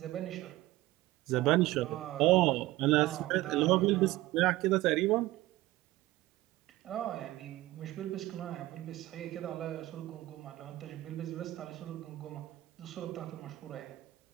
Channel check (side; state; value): left; quieter; 17.6 dB